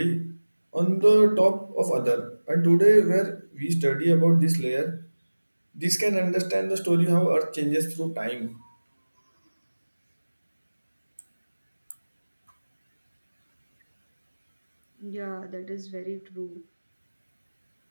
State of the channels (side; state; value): both; inverted; correlation -1.00